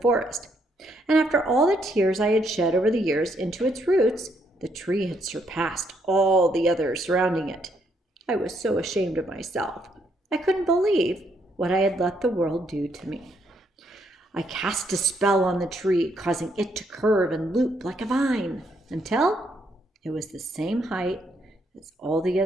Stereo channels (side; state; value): both; normal; correlation 0.73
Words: And after all the tears I had shed over the years into its roots, the tree had surpassed all the others surrounding it. I was so ashamed of myself. I couldn't believe what I had let the world do to me. I cast a spell on the tree, causing it to curve and loop like a vine, until it was the same height as all the